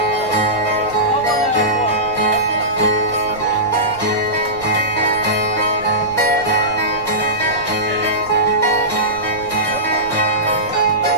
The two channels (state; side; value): noise; right; rumble, 19 dB below the sound